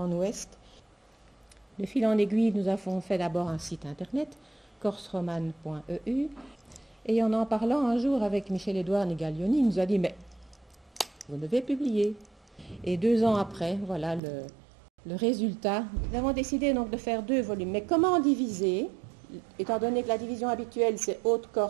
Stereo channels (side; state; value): left; drops out; at 14.2 s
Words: ouest. De fil en aiguille, nous avons fait d'abord un site internet, corseromane.eu. Et en parlant un jour avec Michel-Édouard Negaglioni, il nous a dit « mais vous devez publier ». Et 2 ans après, voilà le résultat. Nous avons décidé donc de faire 2 volumes. Mais comment diviser, étant donné que la division habituelle c'est